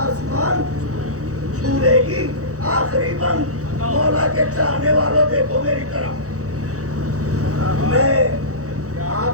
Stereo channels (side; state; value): left; late; 0.65 ms